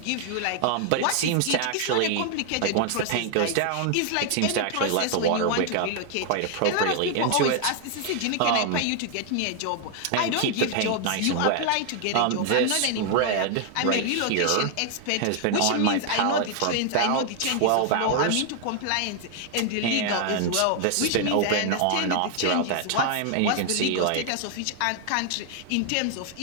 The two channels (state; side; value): different; both; correlation 0.00